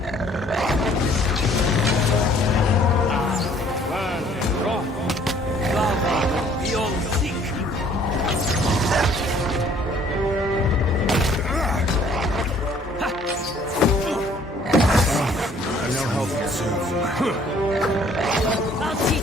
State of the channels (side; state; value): both; normal; correlation 0.58